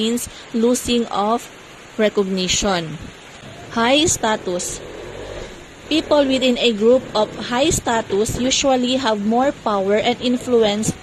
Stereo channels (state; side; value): identical; both; correlation 1.00